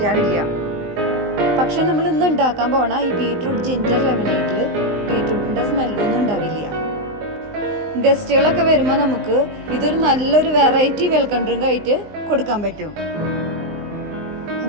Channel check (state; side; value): late; left; 19 ms